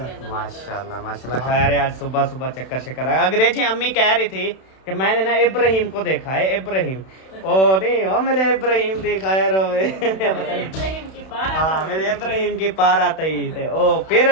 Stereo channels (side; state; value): right; late; 31 ms